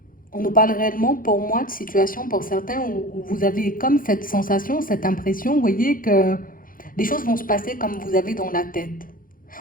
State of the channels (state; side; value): late; right; 0.40 ms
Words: on nous parle réellement, pour moi, de situations pour certains où vous avez comme cette sensation, cette impression, vous voyez, que les choses vont se passer comme vous avez dans la tête.